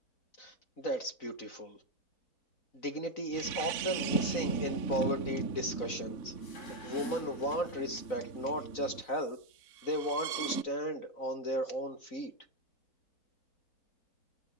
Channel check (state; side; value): late; right; 4.0 ms